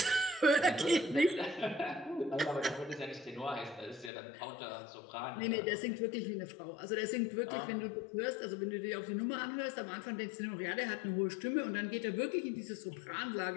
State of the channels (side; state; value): right; drops out; at 4.1 s